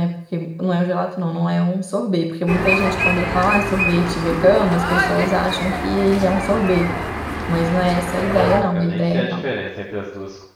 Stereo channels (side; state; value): both; identical; correlation 1.00